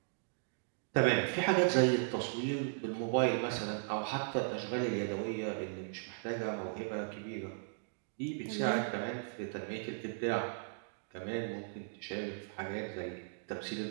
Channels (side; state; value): left; silent; digital silence